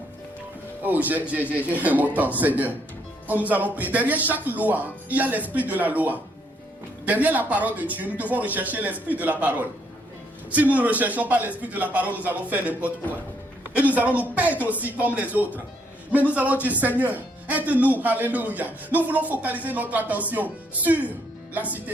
Oh, j'ai mon temps, Seigneur. Oh, nous allons prier. Derrière chaque loi, il y a l'esprit de la loi. Derrière la parole de Dieu, nous devons rechercher l'esprit de la parole. Si nous ne recherchons pas l'esprit de la parole, nous allons faire n'importe quoi. Et nous allons nous perdre aussi comme les autres. Mais nous allons dire, Seigneur, aide-nous, alléluia. Nous voulons focaliser notre attention sur la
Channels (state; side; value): normal; both; correlation 0.71